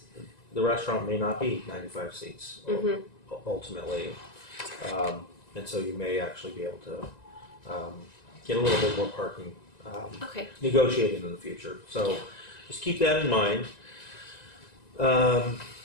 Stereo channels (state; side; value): late; right; 1.9 ms